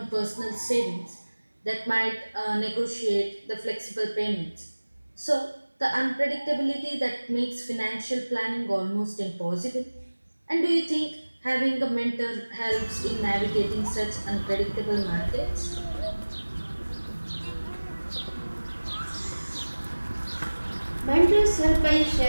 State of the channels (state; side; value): inverted; both; correlation -1.00